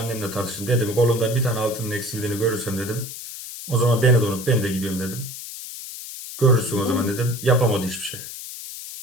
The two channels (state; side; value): noise; left; hiss, 10 dB below the sound